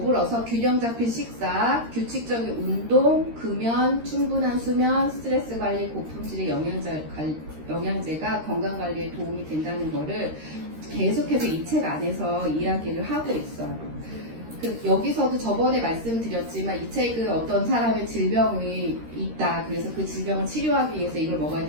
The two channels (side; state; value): left; late; 13 ms